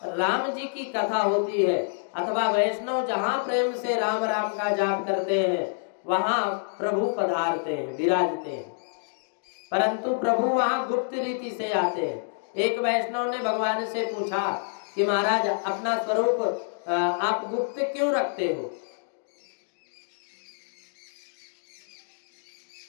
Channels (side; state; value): right; silent; digital silence